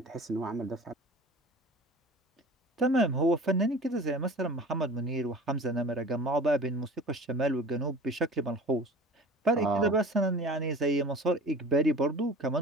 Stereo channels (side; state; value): both; normal; correlation 0.41